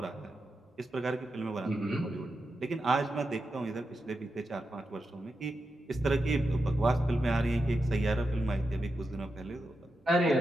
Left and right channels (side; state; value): both; normal; correlation 0.88